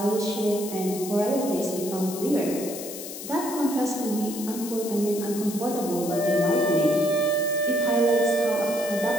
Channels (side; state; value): left; noise; hiss, 10 dB below the sound